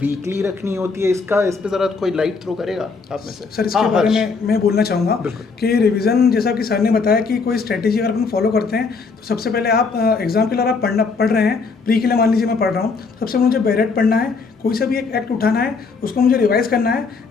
रखनी होती है? इसका इस पे जरा कोई लाइट थ्रो करेगा आप में से? सर इसके बारे में मैं बोलना चाहूँगा कि रिवीजन, जैसा कि सर ने बताया कि कोई स्ट्रैटेजी अगर अपन फॉलो करते हैं तो सबसे पहले आप एग्जाम के लिए आप पढ़ रहे हैं, प्री के लिए मान लीजिए मैं पढ़ रहा हूँ, सबसे पहले मुझे बैरेट पढ़ना है, कोई सा भी एक एक्ट उठाना है, उसको मुझे रिवाइज करना है,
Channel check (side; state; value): right; quieter; 4.7 dB